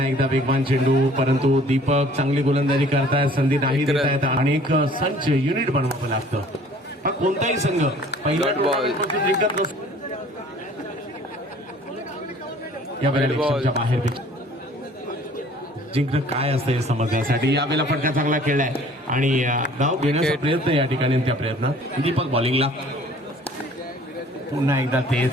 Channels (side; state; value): both; normal; correlation 0.53